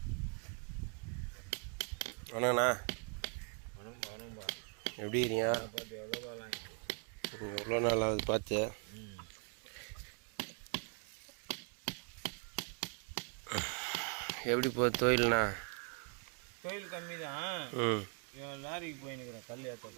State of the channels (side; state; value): left; quieter; 39.3 dB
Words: வணக்கண்ணா. எப்படி இருக்கீங்க? எவ்வளோ நாள் ஆகுது பார்த்து? எப்படி போகுது தொழில்ண்ணா? தொழில் கம்மி தான். லாரிக்கு போயின்னுக்கிறேன் கல்